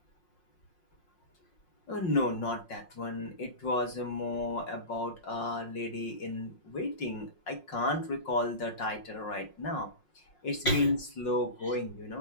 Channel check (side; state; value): right; late; 5.5 ms